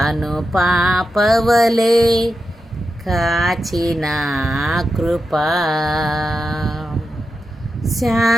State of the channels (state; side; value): normal; both; correlation 0.89